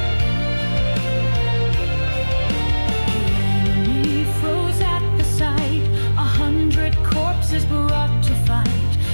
The enemy froze at the sight. 100 corpses brought to fight.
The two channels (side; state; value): both; inverted; correlation -1.00